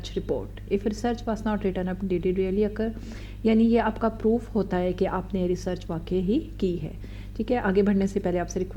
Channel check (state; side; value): identical; both; correlation 1.00